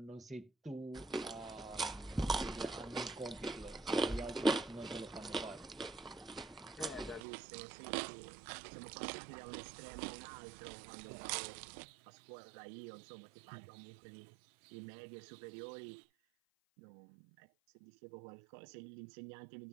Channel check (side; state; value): left; drops out; at 7.2 s